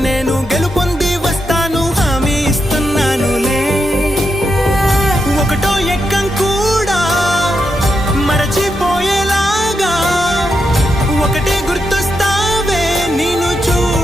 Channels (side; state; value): both; normal; correlation 0.84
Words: నేను గెలుపొంది వస్తాను హామీ ఇస్తున్నానులే. ఒకటో ఎక్కం కూడా మరచిపోయేలాగా ఒకటే గుర్తొస్తావే. నేను